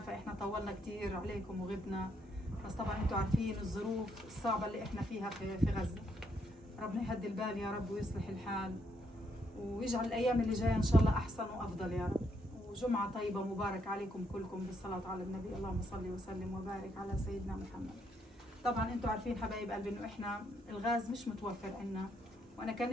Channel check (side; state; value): both; normal; correlation 0.75